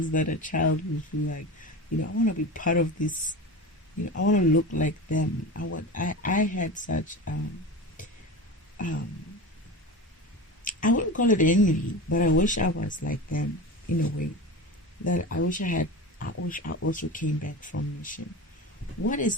that a child will feel like, I want to be part of this. I want to look like them. I had such, I wouldn't call it envy, but I wish I was like them in a way. That I wish I also came back from mission. What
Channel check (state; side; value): normal; both; correlation 0.28